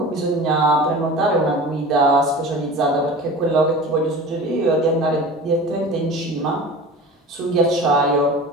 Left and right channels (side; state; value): both; normal; correlation 0.36